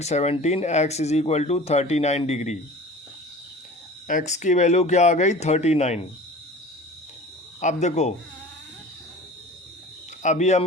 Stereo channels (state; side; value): normal; both; correlation 0.40